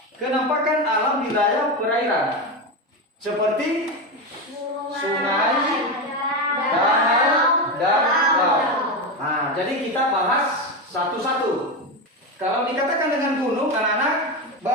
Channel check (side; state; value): both; normal; correlation 0.15